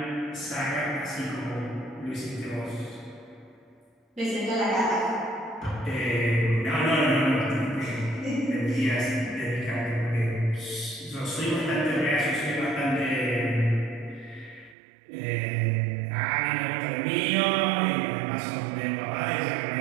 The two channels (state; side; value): drops out; left; at 14.8 s